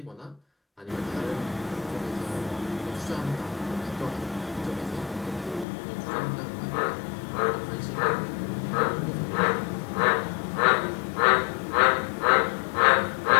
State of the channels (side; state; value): right; drops out; at 5.7 s